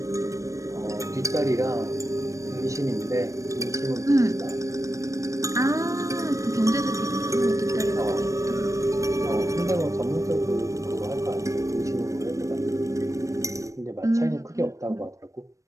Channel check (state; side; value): late; left; 0.15 ms